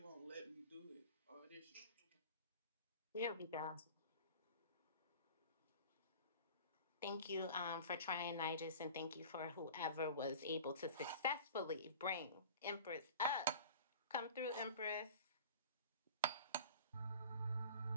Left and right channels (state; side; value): inverted; both; correlation -0.39